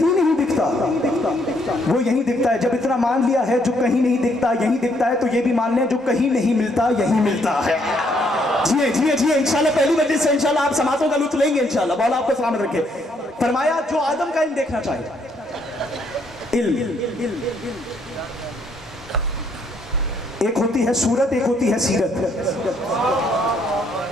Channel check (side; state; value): both; normal; correlation 0.70